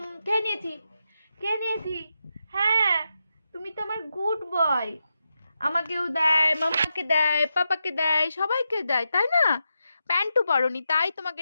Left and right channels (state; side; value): inverted; both; correlation -0.87